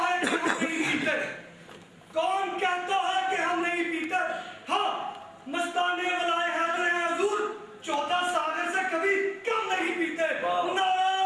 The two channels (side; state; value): both; identical; correlation 1.00